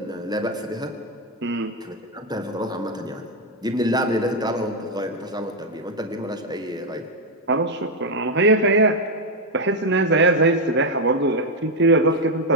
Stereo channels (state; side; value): normal; both; correlation 0.02